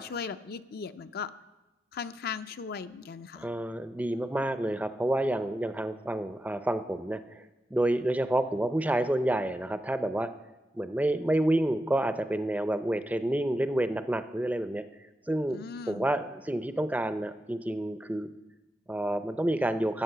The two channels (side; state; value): both; normal; correlation 0.88